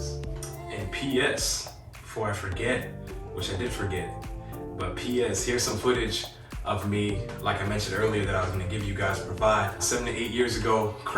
And P.S., before I forget, which I did forget, but P.S., here's some footage of me, like I mentioned earlier, that I was gonna give you guys, provide 7 to 8 years ago,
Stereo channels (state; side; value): identical; both; correlation 1.00